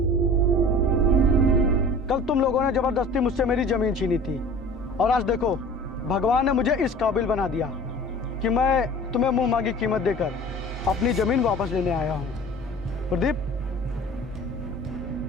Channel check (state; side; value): normal; both; correlation 0.43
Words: कल तुम लोगों ने ज़बरदस्ती मुझसे मेरी ज़मीन छीनी थी और आज देखो भगवान ने मुझे इस काबिल बना दिया कि मैं तुम्हें मुंह मांगी कीमत देकर अपनी ज़मीन वापस लेने आया हूँ। प्रदीप,